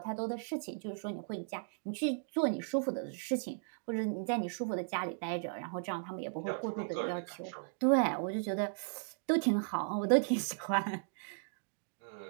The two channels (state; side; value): silent; left; digital silence